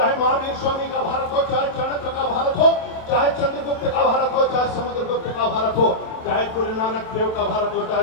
महावीर स्वामी का भारत हो, चाहे चाणक्य का भारत हो, चाहे चंद्रगुप्त का भारत हो, चाहे समुद्रगुप्त का भारत हो, चाहे गुरु नानक देव का भारत हो,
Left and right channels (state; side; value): late; right; 27 ms